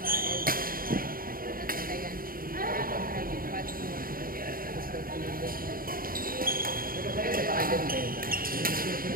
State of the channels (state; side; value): late; left; 0.42 ms